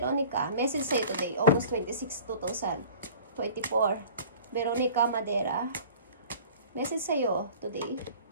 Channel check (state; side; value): inverted; both; correlation -0.45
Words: message sa'yo today, August 26, 2024. Veronica Madera. Message sa'yo today.